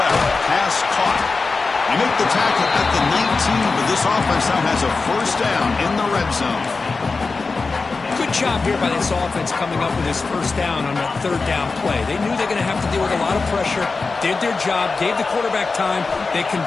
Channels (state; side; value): quieter; right; 4.1 dB